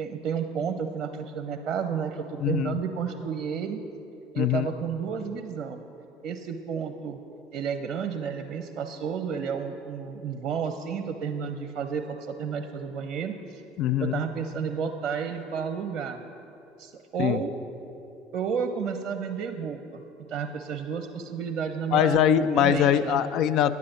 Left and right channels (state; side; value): normal; both; correlation 0.39